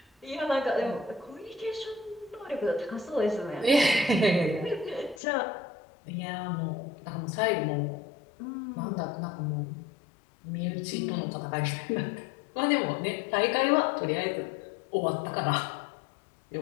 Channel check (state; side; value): drops out; right; at 5.2 s